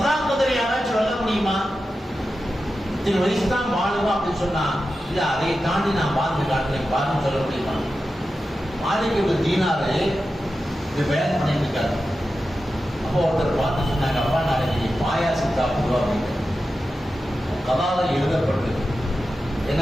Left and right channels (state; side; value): normal; both; correlation 0.92